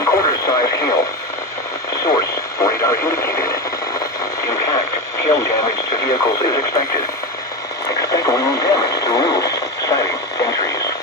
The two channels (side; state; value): both; normal; correlation 0.19